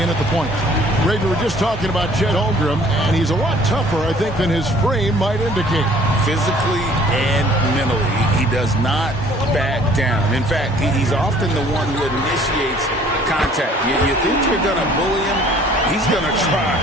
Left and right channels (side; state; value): both; normal; correlation 0.55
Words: in at the point. Ray, we were just talking about Chet Holmgren, and he's a lot tougher, I think, than his frame might indicate. Physically and mentally, he does not back down. In fact, he's often the one who initiates contact. You think you're going to bully him? He's going to try